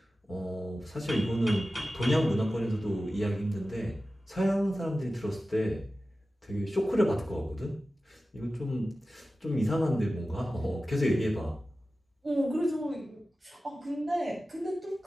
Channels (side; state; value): both; normal; correlation 0.95